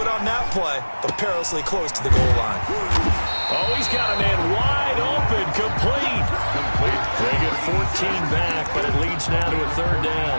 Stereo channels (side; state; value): both; inverted; correlation -1.00